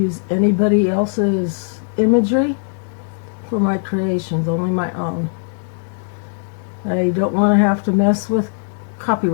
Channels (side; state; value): right; silent; digital silence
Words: anybody else's imagery. for my creations, only my own. I don't want to have to mess with